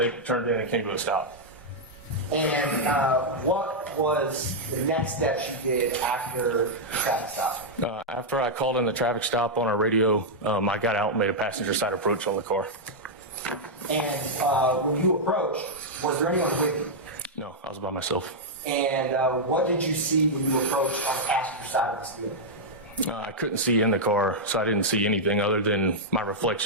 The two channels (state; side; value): normal; both; correlation -0.05